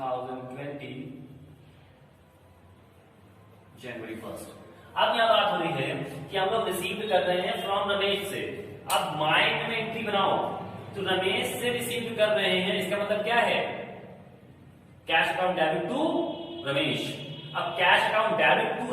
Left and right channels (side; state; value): both; identical; correlation 1.00